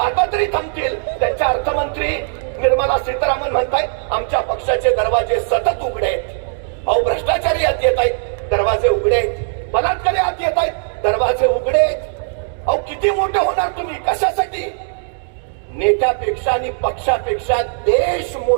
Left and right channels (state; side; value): silent; left; 64 dB below the other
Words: तरी थांबतील. त्यांच्या अर्थमंत्री निर्मला सीतारामन म्हणताय आमच्या पक्षाचे दरवाजे सतत उघडे आहेत. भ्रष्टाचारी आत येत आहेत, दरवाजे उघडे आहेत. बलात्कारी आत येत आहेत, दरवाजे उघडे आहेत. किती मोठे होणार तुम्ही? कशासाठी? नेत्यापेक्षा आणि पक्षापेक्षा देश